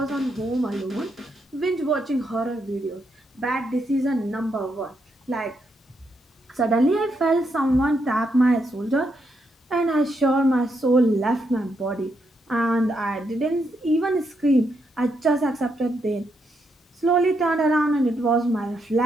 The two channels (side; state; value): both; normal; correlation 0.79